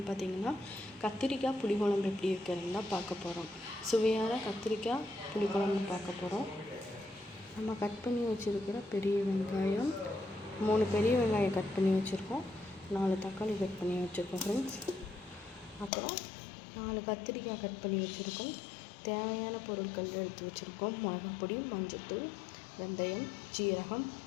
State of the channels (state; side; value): drops out; right; at 15.9 s